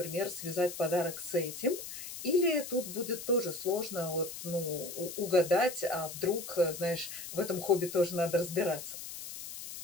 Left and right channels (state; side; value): noise; left; hiss, 10 dB below the sound